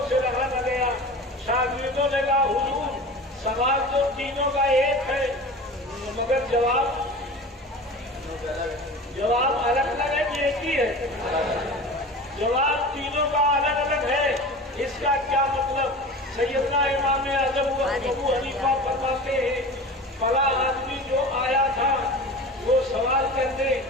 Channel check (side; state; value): both; normal; correlation 0.35